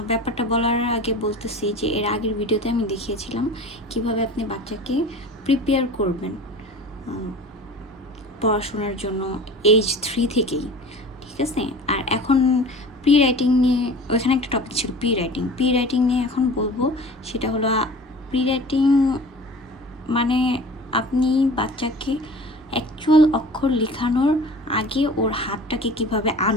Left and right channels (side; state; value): both; normal; correlation 0.40